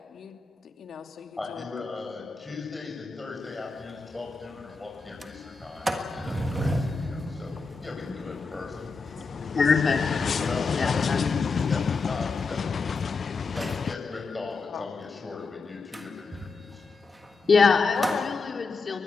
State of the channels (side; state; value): right; quieter; 4.4 dB